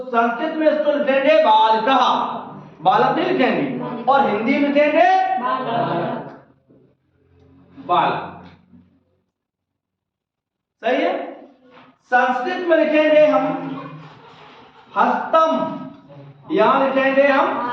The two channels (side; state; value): both; identical; correlation 1.00